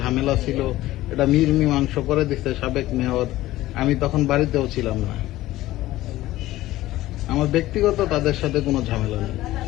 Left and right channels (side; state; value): right; quieter; 16.1 dB